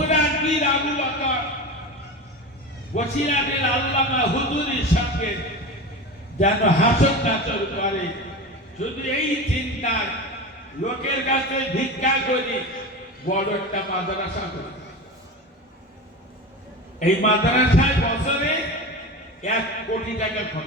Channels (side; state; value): both; normal; correlation 0.27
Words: পীর আবু বকর বসিরহাটের আল্লামা হুজুরির সঙ্গে যেন হাসর নাচর করে। শুধু এই চিন্তায় লোকের কাছে ভিক্ষা করি, বড় একটা মাদ্রাসা করি। এই মাদ্রাসায় বছরে 1 কোটি টাকা